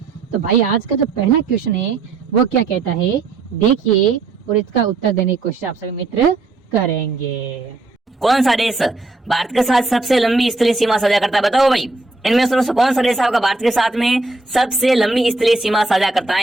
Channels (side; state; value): left; quieter; 3.4 dB